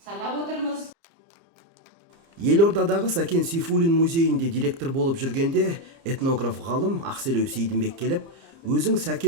санап отырмыз. Елордадағы Сәкен Сейфуллин музейінде директор болып жүргенде этнограф ғалым Ақселеу Сейдімбек келіп, өзің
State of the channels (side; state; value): left; late; 30 ms